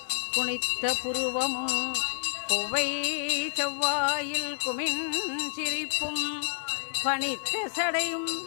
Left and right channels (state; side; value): silent; right; digital silence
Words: குனித்த புருவமும் கொவ்வை செவ்வாயில் குமின் சிரிப்பும் பனித்த சடையும்